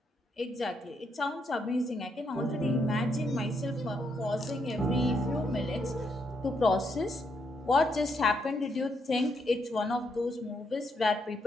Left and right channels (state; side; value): normal; both; correlation 0.77